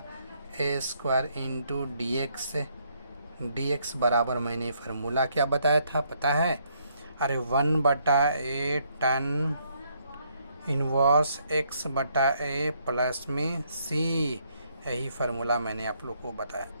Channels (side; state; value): both; inverted; correlation -0.71